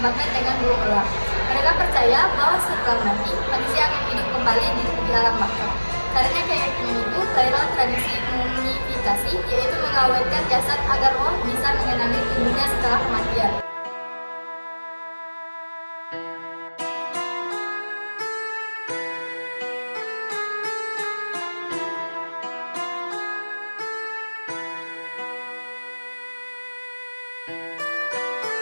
dengan burung elang. Mereka percaya bahwa setelah mati, manusia akan hidup kembali di alam baka. Karena keyakinan itu, lahirlah tradisi mumifikasi, yaitu mengawetkan jasad agar roh bisa mengenali tubuhnya setelah kematian.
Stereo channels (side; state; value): both; inverted; correlation -1.00